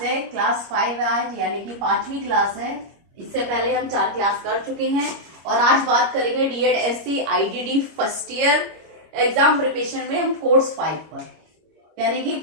है क्लास 5 है आज, यानी कि 5वीं क्लास है। इससे पहले हम 4 क्लास कर चुके हैं और आज बात करेंगे DED-SC IDD first year exam preparation में हम कोर्स 5 पर, यानी कि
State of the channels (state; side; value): late; left; 25 ms